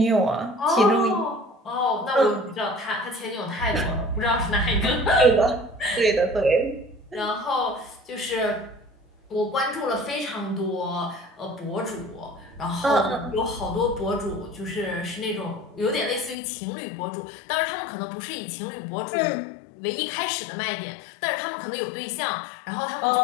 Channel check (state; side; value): drops out; right; at 16.4 s